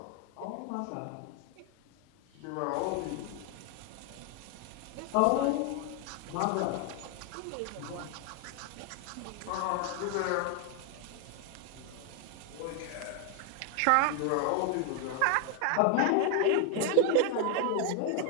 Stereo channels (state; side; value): different; both; correlation 0.00